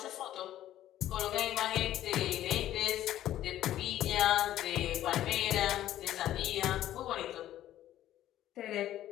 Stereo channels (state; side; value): quieter; right; 12.9 dB